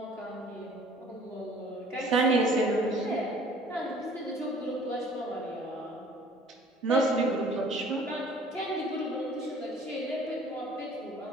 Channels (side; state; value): both; normal; correlation 0.53